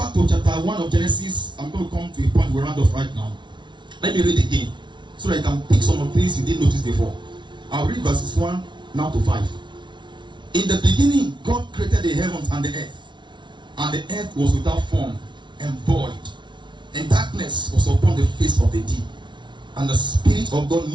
to chapter 1 of Genesis, I'm going to come to a point we round off right now. Let me read again so that you can pick some of the things you didn't notice before. I'll read verses 1 now to 5. In the beginning, God created the heavens and the earth, and the earth was without form and void, and darkness was upon the face of the deep, and the Spirit of God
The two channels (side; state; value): left; late; 0.23 ms